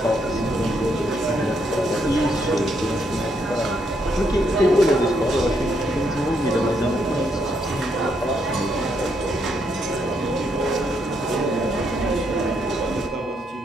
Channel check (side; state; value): both; normal; correlation 0.75